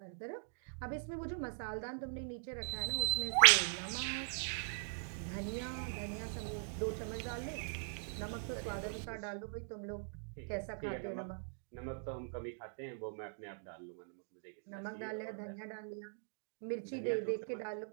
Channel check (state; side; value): silent; left; digital silence